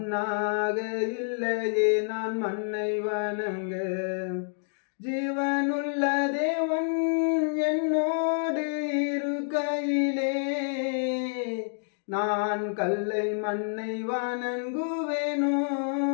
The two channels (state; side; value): silent; right; digital silence